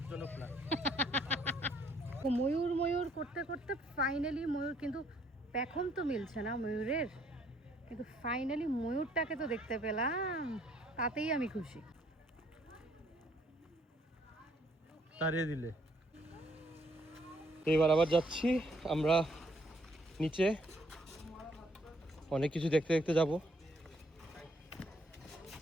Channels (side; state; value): both; normal; correlation 0.66